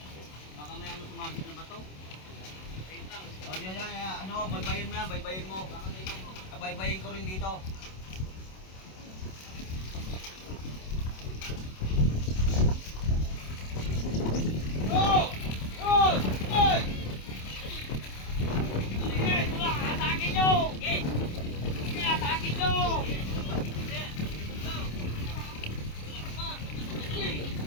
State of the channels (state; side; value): late; right; 27 ms